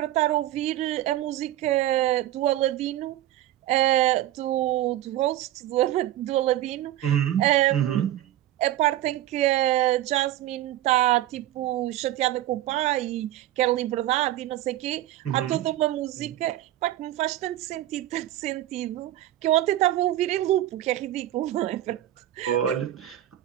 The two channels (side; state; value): left; quieter; 13.8 dB